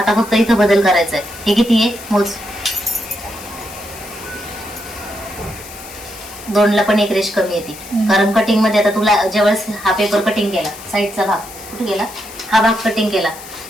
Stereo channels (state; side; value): noise; left; hiss, 16 dB below the sound